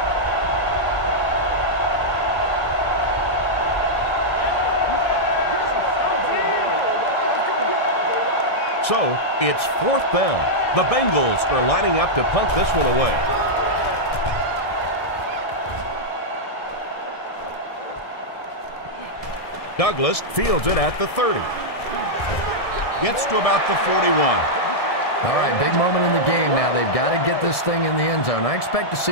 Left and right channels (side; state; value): right; late; 1.7 ms